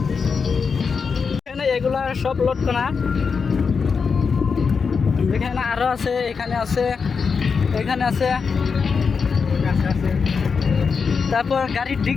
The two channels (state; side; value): quieter; right; 5.5 dB